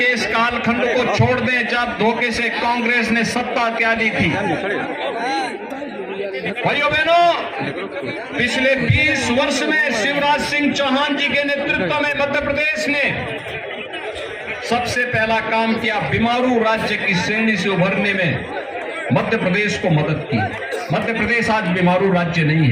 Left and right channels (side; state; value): both; identical; correlation 1.00